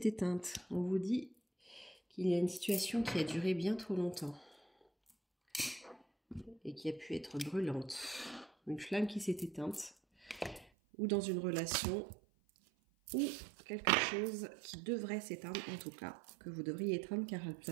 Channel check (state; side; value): drops out; left; at 10.7 s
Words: éteinte. On vous dit qu'il y a une situation qui a duré bien trop longtemps et qui a pu être brûlante. Une flamme qui s'est éteinte, ou dans une relation, ou quelque chose qui devrait s'éteindre, en tout cas, que vous devriez éteindre car ça